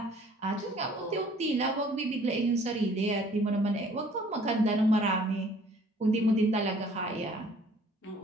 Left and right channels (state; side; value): normal; both; correlation 0.56